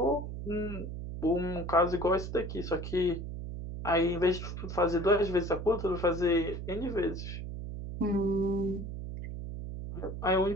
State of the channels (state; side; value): noise; right; hum, 7 dB below the sound